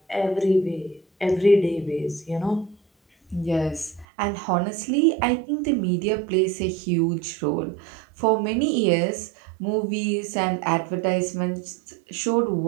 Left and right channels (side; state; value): left; drops out; at 4.0 s